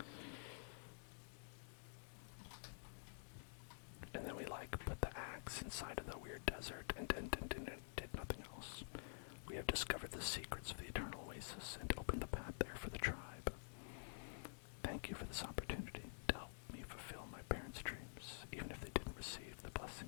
And then we like put the axe inside of the weird desert and did nothing else. We have discovered the secrets of the eternal oasis and opened the path there for the tribe. Thank you for this opportunity to help me fulfill my parents' dreams, even if they didn't receive the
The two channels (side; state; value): right; silent; digital silence